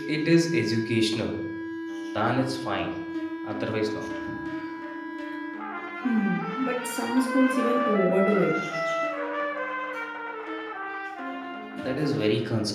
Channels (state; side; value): identical; both; correlation 1.00